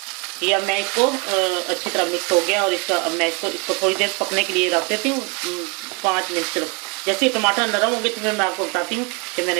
ये अब मैं इसको अच्छी तरह मिक्स हो गया, और इसका अब मैं इसको थोड़ी देर पकने के लिए रख देती हूँ, 5 मिनट सिर्फ। जैसे ही टमाटर नरम होंगे तो फिर मैं आपको बताती हूँ कि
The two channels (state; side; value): quieter; left; 29.0 dB